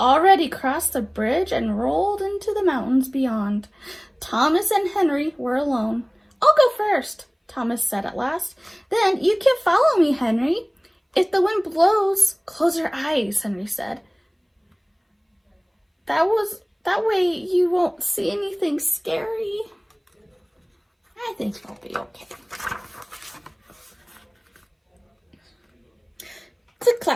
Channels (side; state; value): both; identical; correlation 1.00